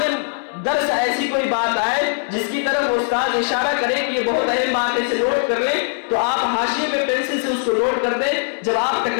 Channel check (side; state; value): right; silent; 66 dB below the other